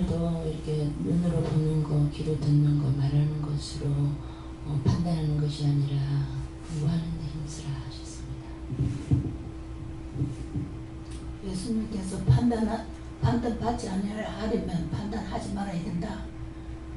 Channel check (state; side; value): identical; both; correlation 1.00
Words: 이렇게 눈으로 보는 거, 귀로 듣는 거, 말하는 것으로 판단하는 것이 아니라 공부하는 데 힘쓰라 하셨습니다. 예수님께서 판단받지 않으려면 판단하지 말아야 된다.